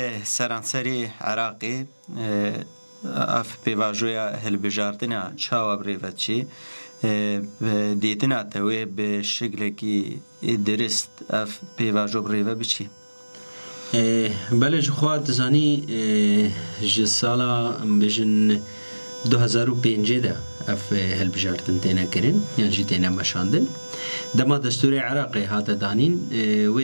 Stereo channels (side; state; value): both; inverted; correlation -1.00